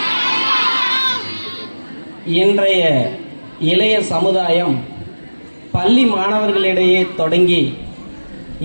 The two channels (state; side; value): inverted; both; correlation -1.00